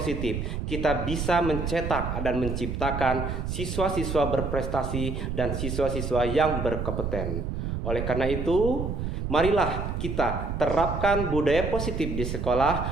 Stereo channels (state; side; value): noise; right; rumble, 3 dB below the sound